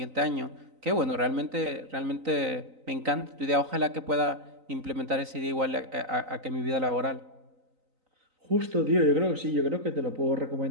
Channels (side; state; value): left; late; 3.9 ms